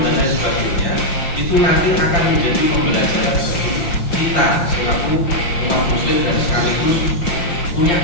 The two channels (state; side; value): late; right; 5.8 ms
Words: dan lain sebagainya, itu nanti akan menjadi pembelajaran bagi kita selaku umat muslim dan sekaligus punya